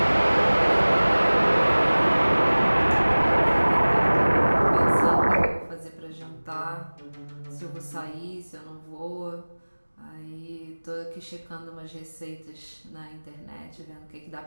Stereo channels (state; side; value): inverted; both; correlation -1.00